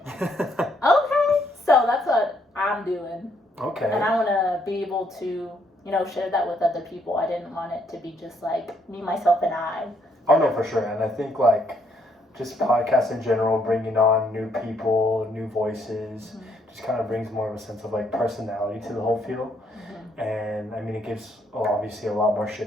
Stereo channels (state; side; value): normal; both; correlation 0.71